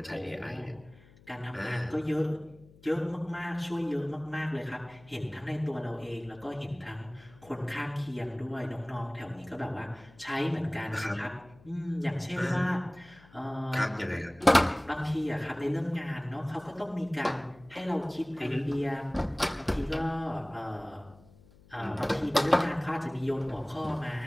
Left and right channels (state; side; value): noise; left; hum, 25 dB below the sound